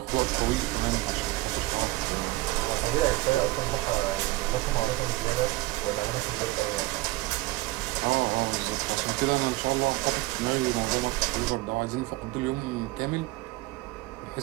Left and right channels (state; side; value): quieter; left; 19.4 dB